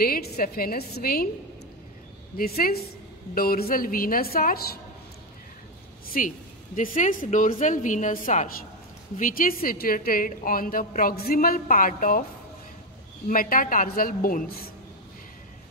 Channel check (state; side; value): normal; both; correlation 0.09